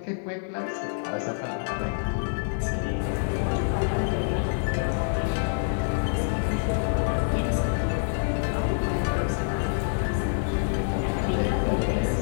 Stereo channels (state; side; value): silent; right; digital silence